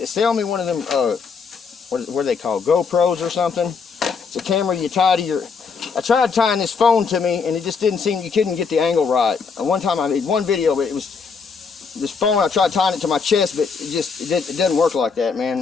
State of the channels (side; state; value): right; quieter; 5.5 dB